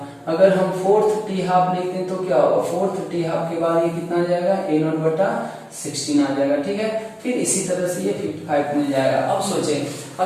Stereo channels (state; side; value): identical; both; correlation 1.00